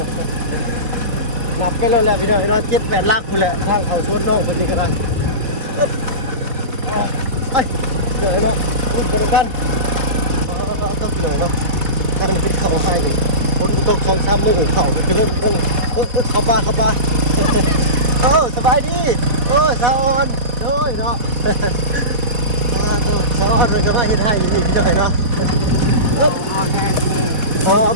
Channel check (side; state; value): left; late; 4.1 ms